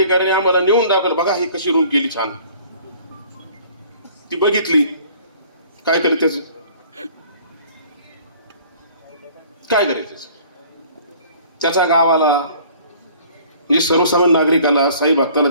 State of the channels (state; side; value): inverted; both; correlation -0.52